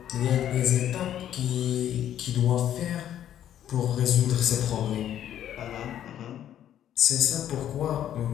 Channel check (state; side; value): quieter; right; 10.9 dB